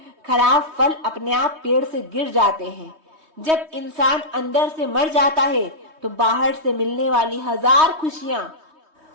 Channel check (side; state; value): left; late; 3.2 ms